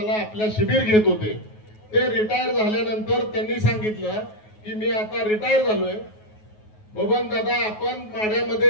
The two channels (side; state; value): right; late; 9.4 ms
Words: आपल्या शिबिर घेत होते. ते रिटायर झाल्यानंतर त्यांनी सांगितलं की मी आता रिटायर झालोय, बबन दादा आपण माढ्यामध्ये